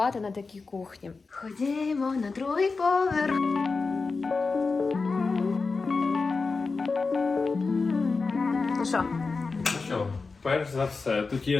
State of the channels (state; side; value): quieter; right; 4.2 dB